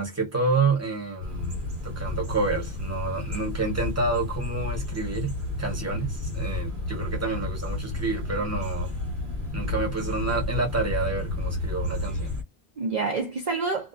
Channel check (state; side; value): normal; both; correlation 0.01